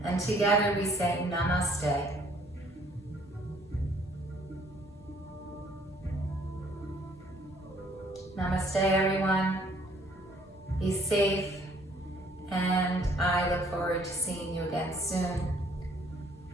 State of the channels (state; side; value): normal; both; correlation 0.61